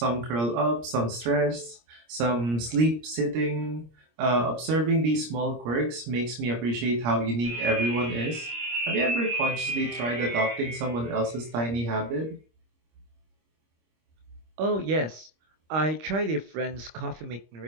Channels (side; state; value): left; late; 26 ms